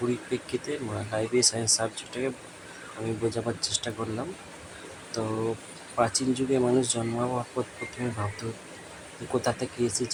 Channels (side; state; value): both; identical; correlation 1.00